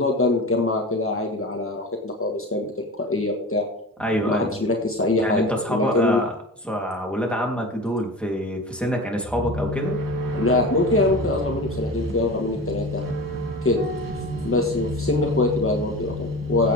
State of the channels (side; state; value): both; normal; correlation 0.32